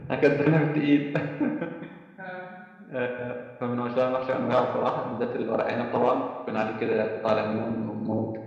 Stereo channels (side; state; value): both; identical; correlation 1.00